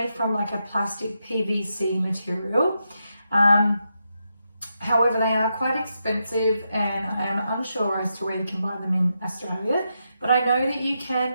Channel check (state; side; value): inverted; both; correlation -0.84